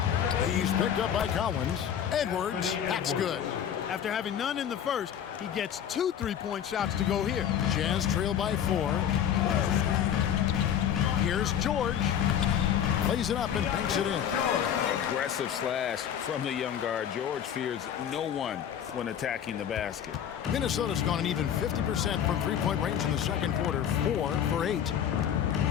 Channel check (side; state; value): right; quieter; 9.2 dB